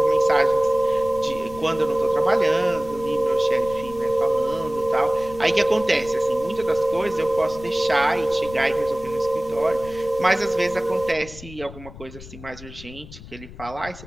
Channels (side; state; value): left; noise; rumble, 16 dB below the sound